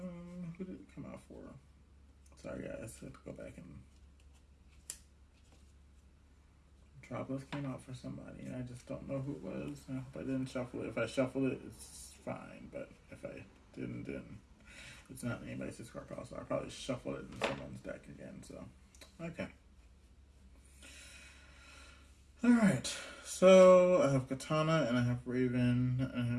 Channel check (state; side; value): identical; both; correlation 1.00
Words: did it come out for? Sorry, guys. I have to go back and... Metropolis came out for somebody, and I just don't know who it was. I hope I didn't shuffle it. If I shuffled it, it's fine. But if I didn't, then it's not anybody's discard pile. So I'll probably shuffle it in someone's deck again. So, okay. Alright, so I have Katana, and I have Raven, and I